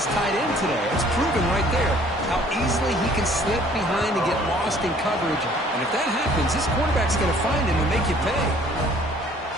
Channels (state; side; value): normal; both; correlation 0.56